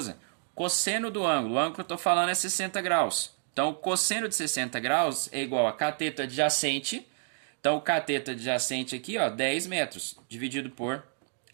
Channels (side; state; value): left; silent; digital silence